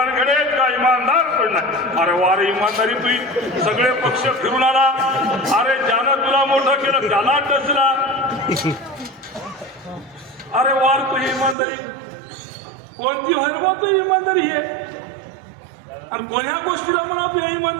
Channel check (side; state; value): left; drops out; at 11.6 s